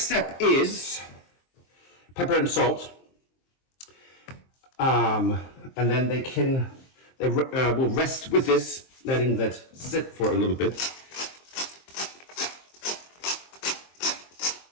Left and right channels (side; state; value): right; late; 23 ms